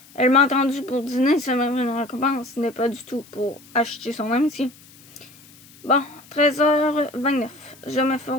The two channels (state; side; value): noise; left; hiss, 24 dB below the sound